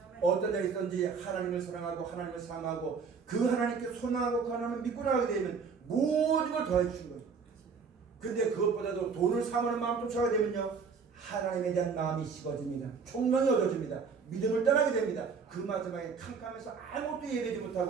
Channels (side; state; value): left; quieter; 5.5 dB